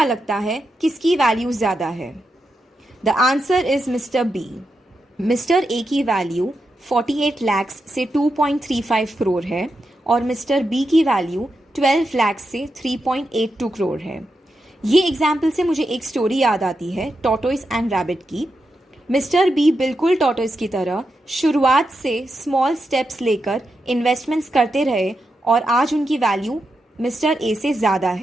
लगता है किसकी वैल्यू ज़्यादा है? The answer is mister B. Mister A की वैल्यू 48 लाख से 2.35 करोड़ है और मिस्टर बी की वैल्यू 12 लाख से 3.82 करोड़ है। ये एग्जाम्पल से मुझे एक स्टोरी याद आती है, टॉर्टोइस एंड रैबिट की। मिस्टर बी बिल्कुल टॉर्टोइस की तरह शुरुआत से स्मॉल स्टेप्स लेकर इन्वेस्टमेंट्स करते रहे और आज उनकी वैल्यू मिस्टर ए से ज़्यादा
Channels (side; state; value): both; normal; correlation 0.86